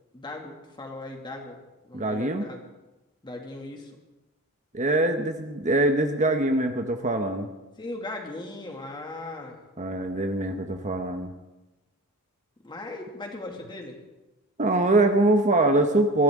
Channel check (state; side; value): normal; both; correlation 0.35